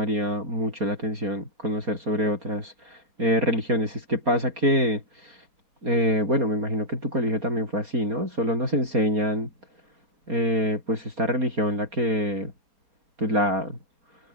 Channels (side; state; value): left; late; 4.3 ms